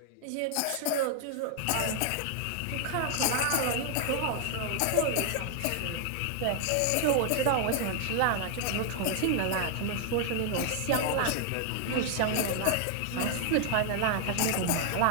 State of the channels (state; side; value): different; both; correlation 0.00